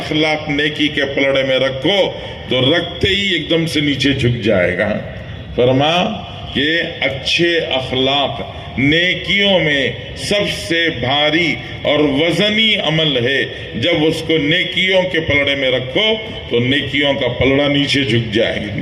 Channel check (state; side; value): identical; both; correlation 1.00